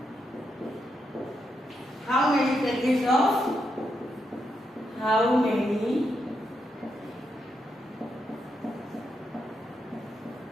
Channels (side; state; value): both; normal; correlation 0.83